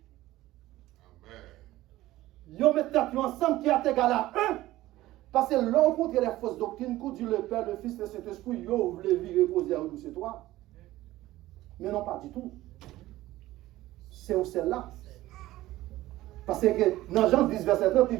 ils mettent ensemble qui est égal à 1. Parce que l'on contre les fausses doctrines, quand Dieu le Père, le Fils, le Saint-Esprit, ils voulaient vivre reposer à nous, c'est toi. Mais non, pas du tout. C'est où celle-là. Parce que dans Jean 10, verset 30, il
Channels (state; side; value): quieter; left; 16.3 dB